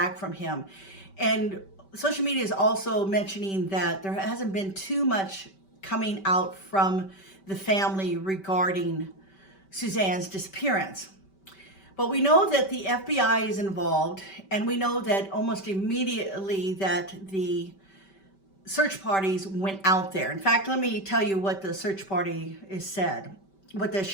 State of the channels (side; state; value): right; late; 5.2 ms